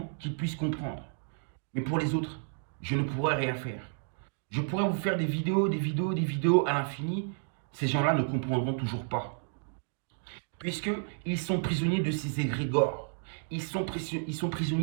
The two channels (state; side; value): silent; left; digital silence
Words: qu'ils puissent comprendre. Mais pour les autres, je ne pourrais rien faire. Je pourrais vous faire des vidéos à l'infini. Ces gens-là ne comprendront toujours pas. Puisqu'ils sont prisonniers de ces égrégores. Ils sont